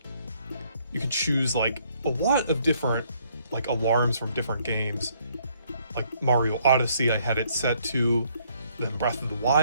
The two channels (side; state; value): both; inverted; correlation -0.67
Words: You could choose like a lot of different like alarms from different games. Like Mario Odyssey, I had it set to, then Breath of the